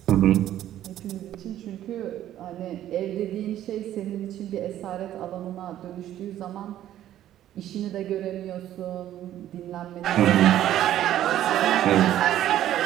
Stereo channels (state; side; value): quieter; left; 12.3 dB